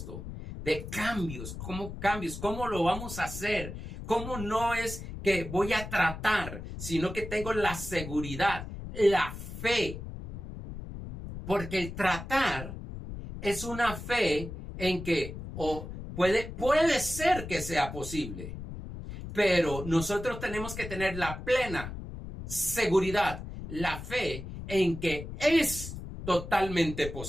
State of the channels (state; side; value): noise; left; rumble, 9 dB below the sound